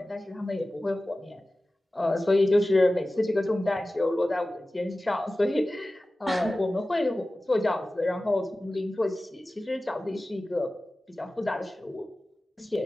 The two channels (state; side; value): normal; both; correlation 0.96